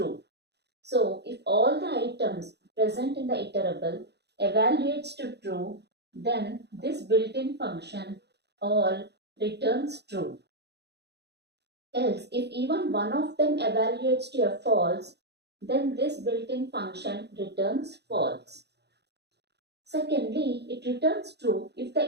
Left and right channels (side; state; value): left; late; 0.49 ms